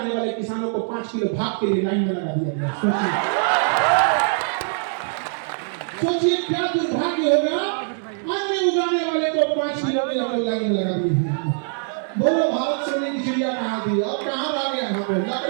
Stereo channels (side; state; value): left; silent; 64 dB below the other